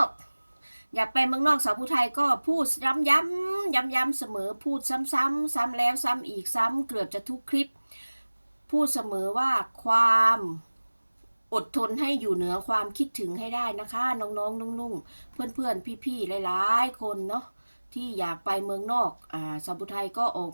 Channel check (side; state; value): both; inverted; correlation -1.00